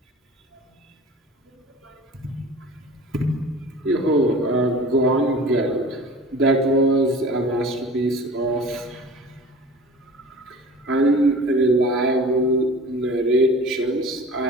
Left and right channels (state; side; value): normal; both; correlation 0.41